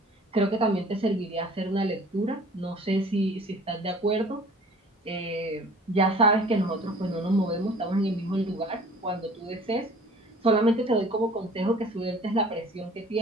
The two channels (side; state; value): both; normal; correlation 0.49